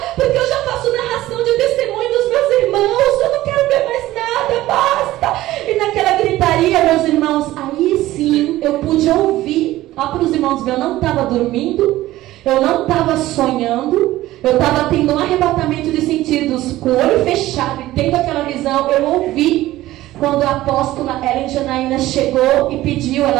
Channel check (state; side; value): quieter; left; 16.0 dB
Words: porque eu já faço narração de testemunho dos meus irmãos, eu não quero ver mais nada, basta. E naquela gritaria, meus irmãos, aí sim eu pude ouvir. Ó, para os irmãos ver, eu não estava dormindo, eu não estava sonhando, eu estava tendo um arrebatamento de sentidos, com o olho fechado e tendo aquela visão. Eu ouvi quando a apóstola Ellen Janaína chegou e pediu,